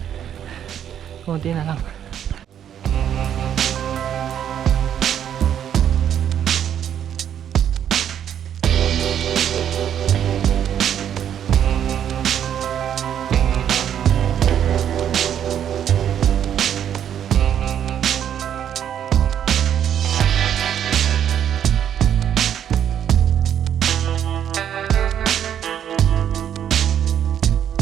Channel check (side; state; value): left; quieter; 9.6 dB